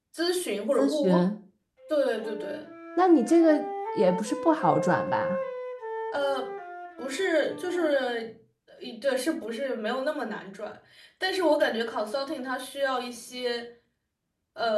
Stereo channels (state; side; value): identical; both; correlation 1.00